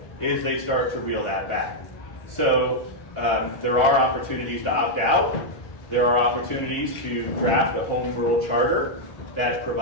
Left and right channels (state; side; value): late; right; 1.5 ms